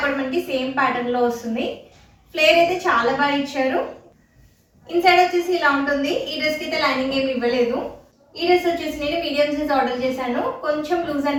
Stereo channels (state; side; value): identical; both; correlation 1.00